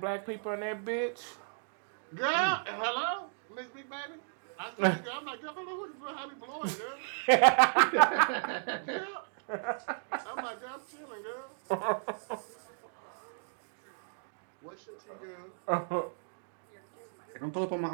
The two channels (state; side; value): silent; left; digital silence